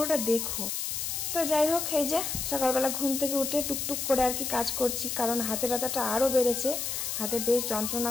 দেখো। তো যাই হোক, এই যে সকালবেলা ঘুম থেকে উঠে টুকটুক করে আর কি কাজ করছি, কারণ হাতে ব্যথাটা আরও বেড়েছে, হাতে বেশ যন্ত্রণা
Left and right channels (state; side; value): noise; left; hiss, 3 dB below the sound